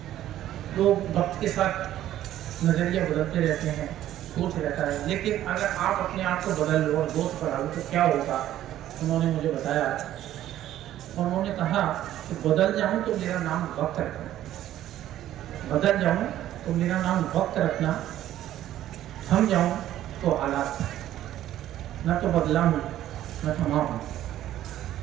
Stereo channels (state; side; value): quieter; left; 12.8 dB